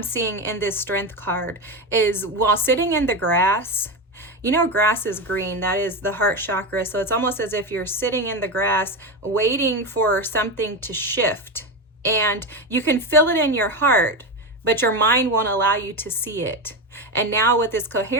seeing in this strength card is while sitting in the grass, you know, grass is green. That is the heart chakra. So it's almost as if you're sitting in the grass waiting for something to shift. And you can feel it in your heart, but your mind won't allow you to see it. And now with this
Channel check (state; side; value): normal; both; correlation 0.16